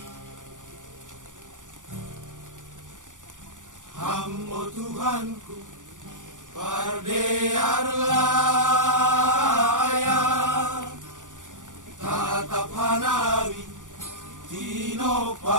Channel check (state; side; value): late; left; 0.87 ms